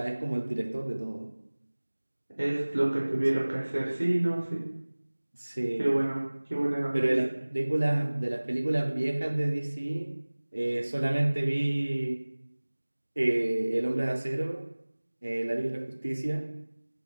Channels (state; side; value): inverted; both; correlation -1.00